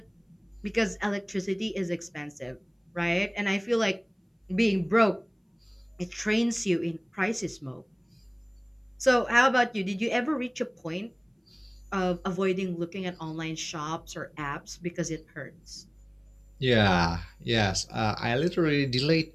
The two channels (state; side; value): identical; both; correlation 1.00